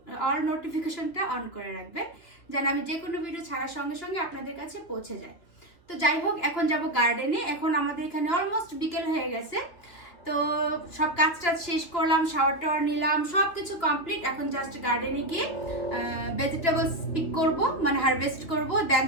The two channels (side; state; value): right; late; 3.1 ms